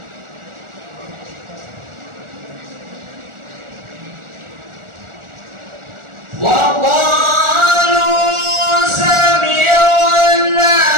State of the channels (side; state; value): left; late; 1.4 ms